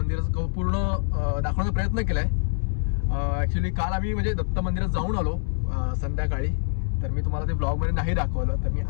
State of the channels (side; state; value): right; silent; 62 dB below the other